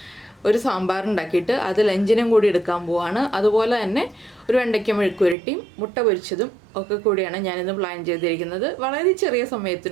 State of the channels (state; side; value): drops out; left; at 5.4 s